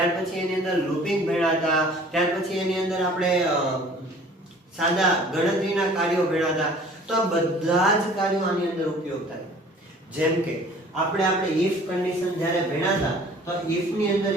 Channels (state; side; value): normal; both; correlation 0.50